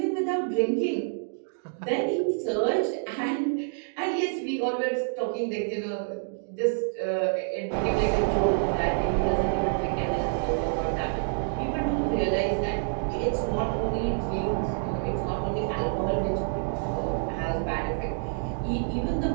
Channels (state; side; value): silent; left; digital silence